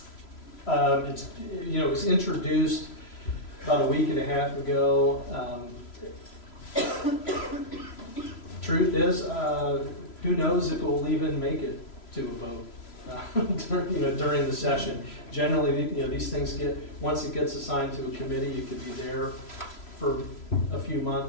It was introduced about a week and a half ago. Truth is, who knows if it will even make it to a vote during the session. Generally, these things once it gets assigned to a committee, it could be there for a few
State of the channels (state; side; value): late; right; 3.0 ms